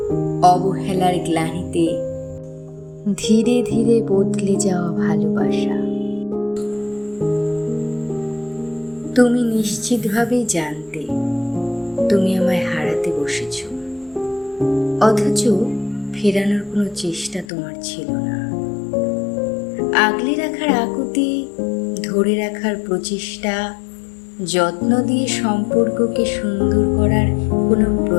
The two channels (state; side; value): drops out; right; at 17.4 s